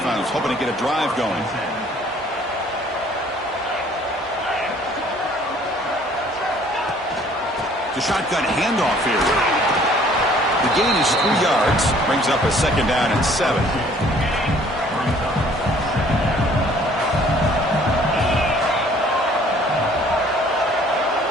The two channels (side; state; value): both; normal; correlation 0.57